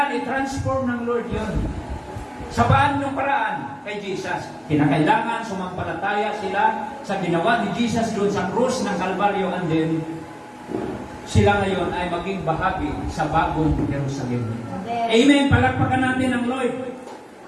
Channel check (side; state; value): both; identical; correlation 1.00